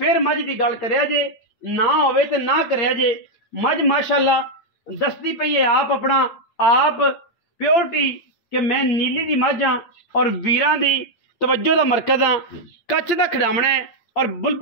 मझ की गल करिया जे, ना होवे तो ना करिया जे। मझ माशाअल्लाह दसदी पई है आप अपना आप प्योरिटी कि मैं नीली दी मझ हाँ और वीरां दी तवज्जो दा मरकज हाँ। कच्छ दा खिडावना है और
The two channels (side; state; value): right; late; 8.7 ms